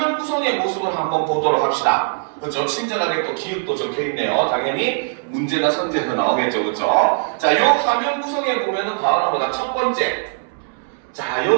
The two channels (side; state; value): left; silent; 66 dB below the other